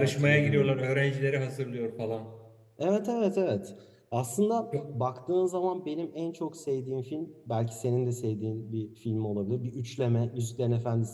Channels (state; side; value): identical; both; correlation 1.00